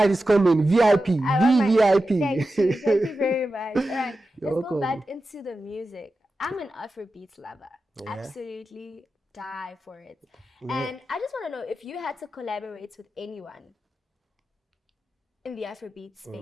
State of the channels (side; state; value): both; normal; correlation 0.92